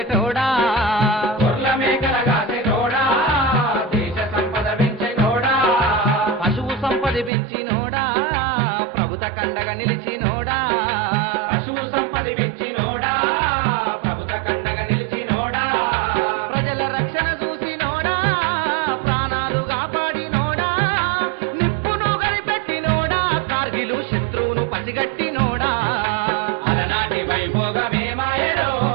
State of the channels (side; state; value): left; drops out; at 7.3 s